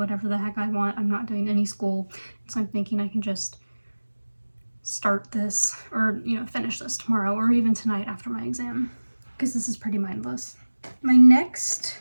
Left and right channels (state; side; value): inverted; both; correlation -1.00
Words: the heck I want. I'm not doing any school, so I'm thinking I can just start this, or you know, finish this tomorrow or even tonight after my exam, because this is pretty mindless. My next